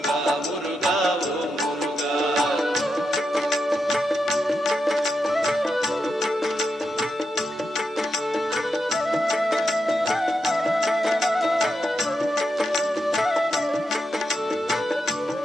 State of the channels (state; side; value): normal; both; correlation 0.86